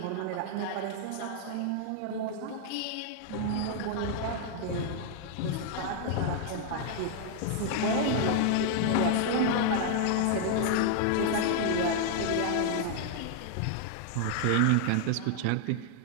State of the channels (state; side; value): different; both; correlation 0.00